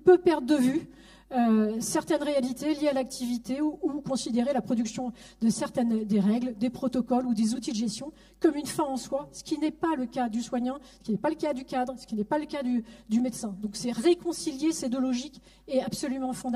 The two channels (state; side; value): identical; both; correlation 1.00